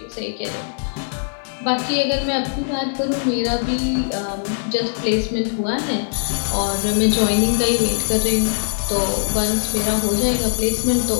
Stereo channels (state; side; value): silent; right; digital silence